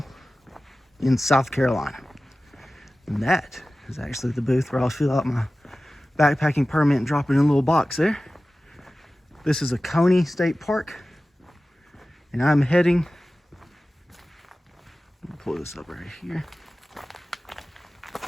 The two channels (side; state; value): both; normal; correlation 0.96